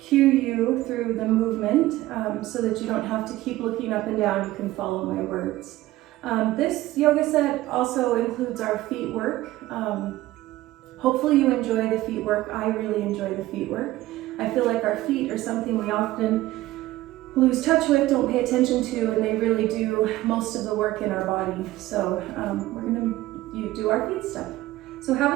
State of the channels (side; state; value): left; quieter; 16.7 dB